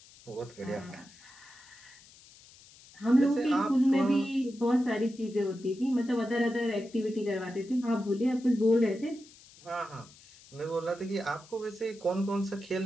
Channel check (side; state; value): left; noise; hiss, 23 dB below the sound